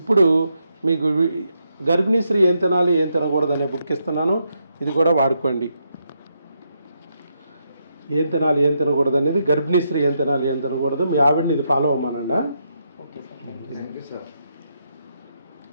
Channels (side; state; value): both; inverted; correlation -0.80